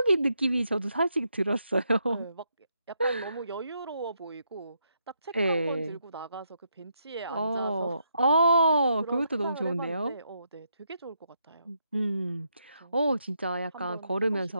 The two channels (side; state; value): both; inverted; correlation -0.78